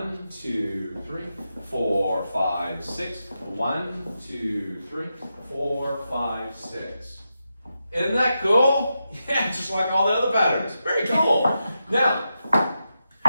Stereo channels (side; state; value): both; inverted; correlation -0.87